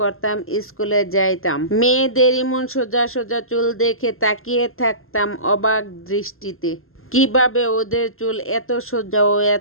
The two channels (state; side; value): late; right; 0.61 ms